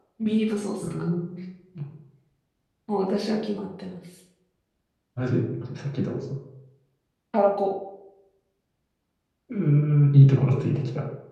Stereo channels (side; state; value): both; identical; correlation 1.00